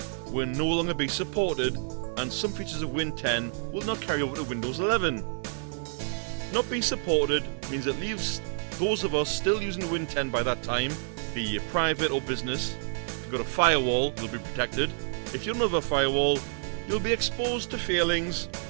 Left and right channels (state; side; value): silent; left; 58 dB below the other